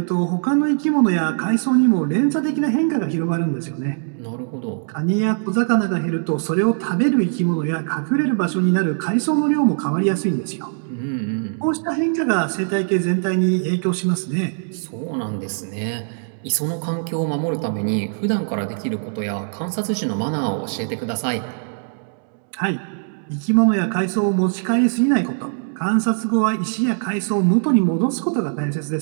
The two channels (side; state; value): left; silent; digital silence